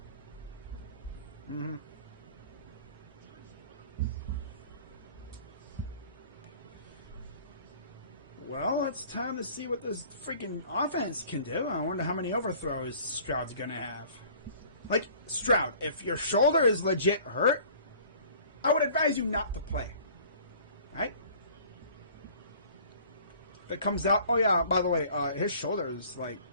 Mm-hmm. Well, it's time to see what this freaking offense can do. I wonder how many overthrows Stroud's going to have. Like, Stroud, if your shoulder is legit hurt, I would advise you not to play. Right? If it comes out, oh yeah, by the way, his shoulder is, like,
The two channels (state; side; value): inverted; both; correlation -0.50